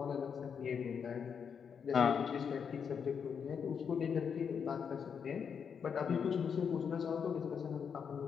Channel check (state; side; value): quieter; right; 6.9 dB